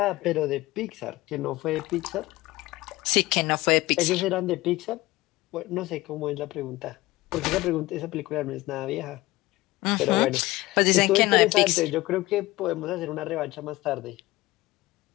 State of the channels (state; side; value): quieter; right; 19.0 dB